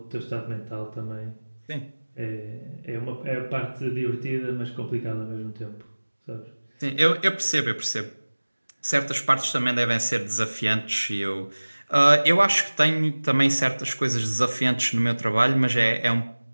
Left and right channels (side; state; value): both; inverted; correlation -1.00